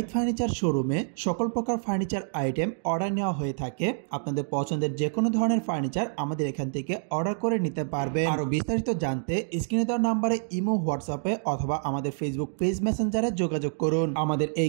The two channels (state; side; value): silent; left; digital silence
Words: ফার্নিচার শোরুমে সকল প্রকার ফার্নিচার আইটেম অর্ডার নেওয়া হয়ে থাকে। আপনাদের পছন্দের যে কোনো ধরনের ফার্নিচার আমাদের এখান থেকে অর্ডার করে নিতে পারবেন। আরো বিস্তারিত জানতে স্ক্রিনে দেওয়া নাম্বারে ইমো, হোয়াটসঅ্যাপে অথবা আমাদের ফেসবুক পেজ মেসেঞ্জারে যোগাযোগ করুন। আমাদের